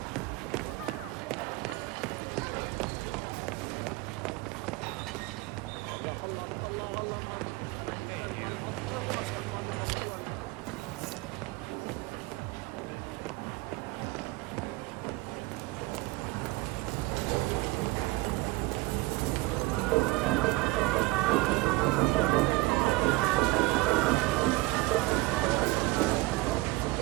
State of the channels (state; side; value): quieter; left; 21.7 dB